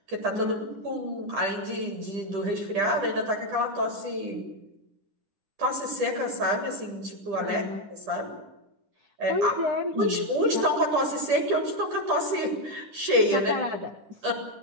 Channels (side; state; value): left; late; 10 ms